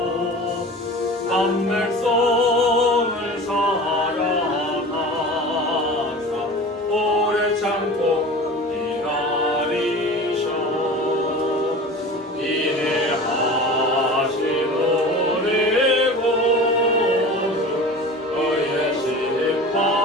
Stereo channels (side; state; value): both; normal; correlation 0.36